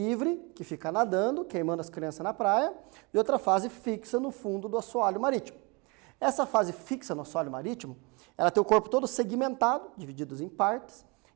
que fica nadando, queimando as crianças na praia, e outra fase fixa no fundo do assoalho marítimo. Essa fase fixa no assoalho marítimo, ela tem o corpo todo segmentado, divididos em partes,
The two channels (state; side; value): quieter; left; 29.1 dB